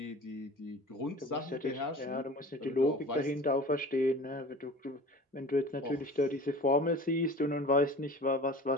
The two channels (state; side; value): normal; both; correlation 0.40